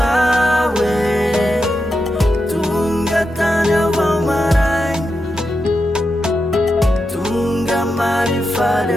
hoe tonga tany avao marainy tonga marifaly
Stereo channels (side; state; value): both; normal; correlation 0.88